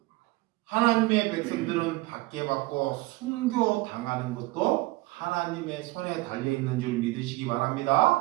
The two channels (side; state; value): left; quieter; 21.4 dB